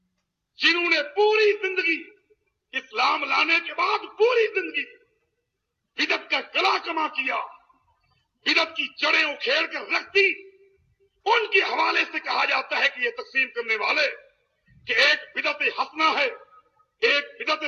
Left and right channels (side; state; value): both; identical; correlation 1.00